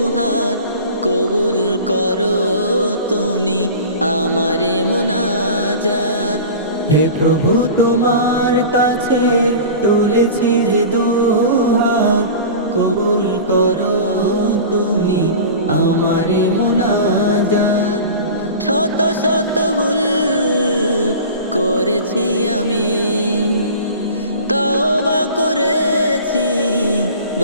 কবুল করো তুমি আমারে মুনাজাত। হে প্রভু তোমার কাছে তুলেছি যে দুহাত, কবুল করো তুমি আমারে মুনাজাত। শত শত ভুল করেছি আমি, তওবা করেছি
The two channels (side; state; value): both; inverted; correlation -0.36